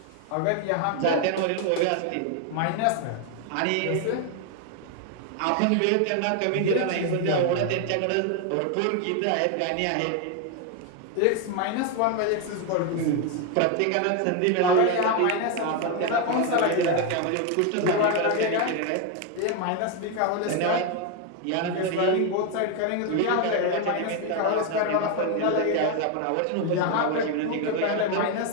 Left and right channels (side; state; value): both; different; correlation 0.01